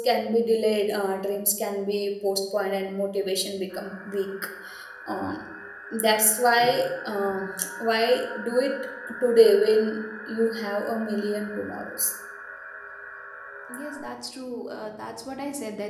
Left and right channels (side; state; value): both; identical; correlation 1.00